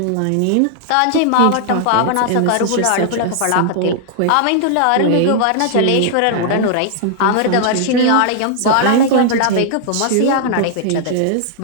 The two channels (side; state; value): both; different; correlation -0.01